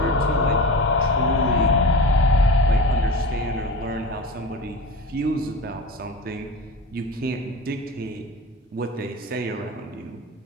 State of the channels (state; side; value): normal; both; correlation 0.31